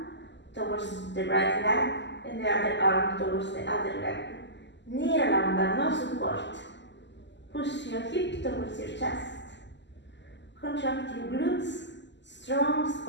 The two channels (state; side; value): late; right; 0.52 ms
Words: towards the right leg and the other arm towards the other leg. Niralamba, no support. Push your hip towards your chest. Contract your glutes, strong